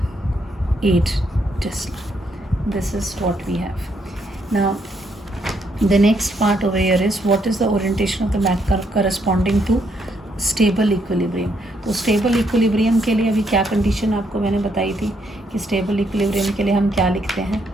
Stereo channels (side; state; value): both; normal; correlation 0.74